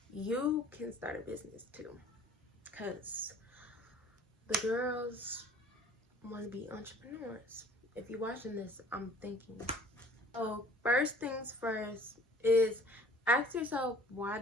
you can start a business too, because the girls want to be entrepreneurs. If you're watching this, I'm thinking. So first things first is ask yourself, why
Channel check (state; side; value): normal; both; correlation 0.51